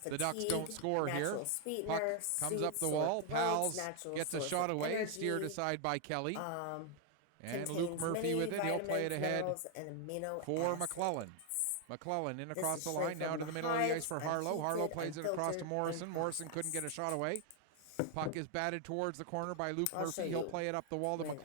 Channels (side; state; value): both; different; correlation 0.00